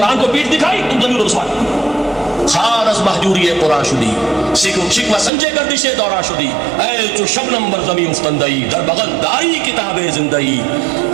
کو پیٹھ دکھائی، تم ضمیر رسوا خار از محجوری قرآن شدی، شکوہ سنجے گردش دورہ شدی، اے جو شبنم بر زمین افتندئی، در بغل داری کتاب زندئی،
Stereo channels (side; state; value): left; drops out; at 5.3 s